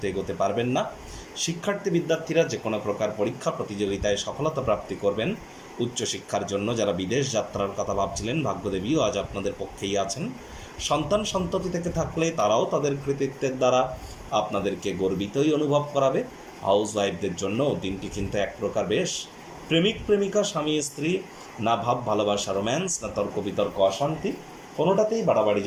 এগোতে পারবেন না। শিক্ষার্থী বিদ্যার্থীরা যে কোনো প্রকার পরীক্ষা প্রতিযোগিতায় সফলতা প্রাপ্তি করবেন। উচ্চশিক্ষার জন্য যারা বিদেশ যাত্রার কথা ভাবছিলেন, ভাগ্যদেবীও আজ আপনাদের পক্ষেই আছেন। সন্তান সন্ততি থেকে থাকলে তারাও তাদের কৃতিত্বের দ্বারা আপনাদেরকে গর্বিতই অনুভব করাবে। হাউস ওয়াইফদের জন্য দিনটি কিন্তু এক প্রকার বেশ। প্রেমিক প্রেমিকা, স্বামী স্ত্রী, না ভাব ভালোবাসা রোম্যান্স, না তর্ক বিতর্ক অশান্তি, কোনোটাতেই বাড়াবাড়ি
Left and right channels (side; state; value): both; identical; correlation 1.00